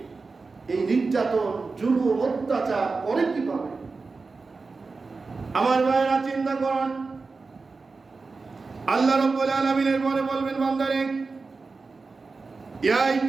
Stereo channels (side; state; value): left; quieter; 4.1 dB